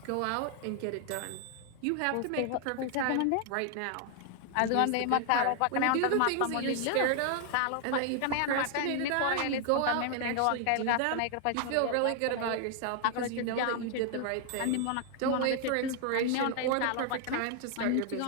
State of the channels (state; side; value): different; both; correlation 0.00